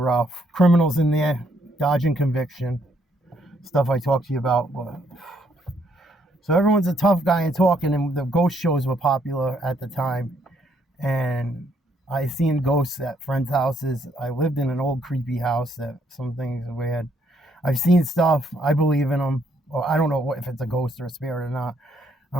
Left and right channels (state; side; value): normal; both; correlation 0.71